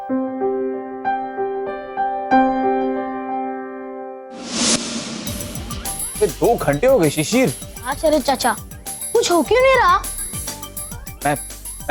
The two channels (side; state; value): both; identical; correlation 1.00